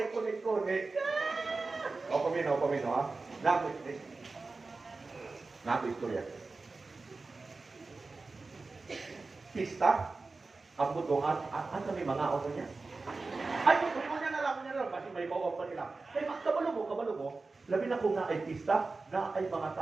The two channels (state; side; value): quieter; left; 3.8 dB